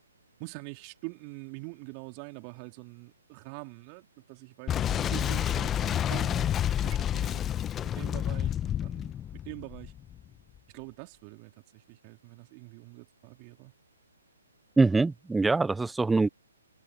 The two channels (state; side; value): normal; both; correlation 0.75